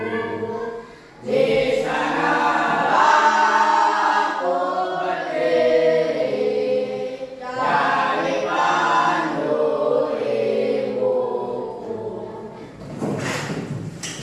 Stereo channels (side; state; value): both; identical; correlation 1.00